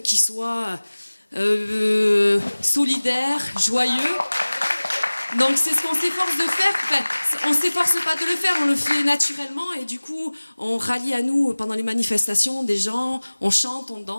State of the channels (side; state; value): both; inverted; correlation -1.00